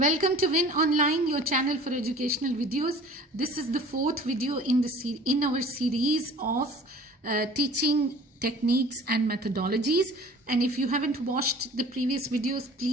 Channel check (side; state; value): both; normal; correlation 0.46